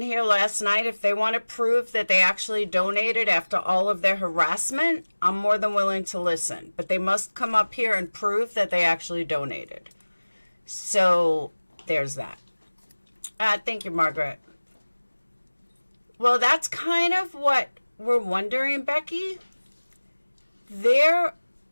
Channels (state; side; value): inverted; both; correlation -1.00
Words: here last night, if they want to prove that they actually donated after all of their harassment, I'm more than willing to listen. But they must come up here and prove that they actually donated. So there's that. Thank you, Margaret. Well, that's kind of what we're wondering, Becky. There